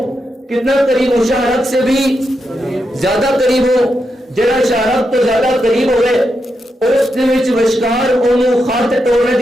کتنا قریب ہوں؟ شہرت سے بھی زیادہ قریب ہوں. جڑا شہرت تو زیادہ قریب ہوئے اس دے وچ وشکار اونوں خط توڑنے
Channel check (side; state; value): both; normal; correlation 0.85